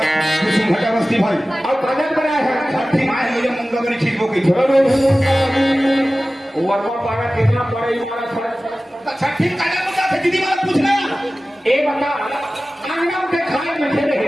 कुसुम घटा बस्ती भाई और कागज बनाए हैं छठी माए मुझे मुंगा बनी ठीक हो गई। वर्मा पारा कितना पड़े हमारा छठी कागज मुद्दा थे दीदी वाला पूछना ए बता आंगन के खाए में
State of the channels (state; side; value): normal; both; correlation 0.96